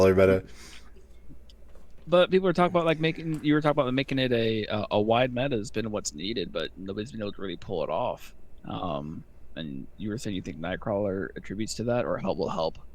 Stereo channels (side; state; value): both; identical; correlation 1.00